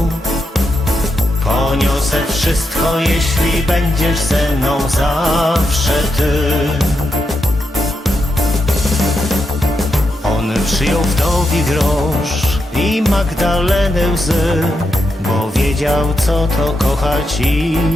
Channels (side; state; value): both; normal; correlation 0.84